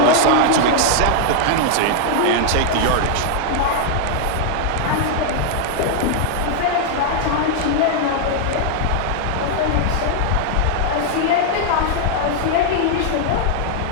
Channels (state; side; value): different; both; correlation 0.00